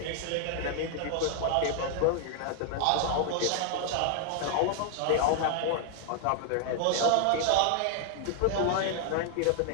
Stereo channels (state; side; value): different; both; correlation 0.00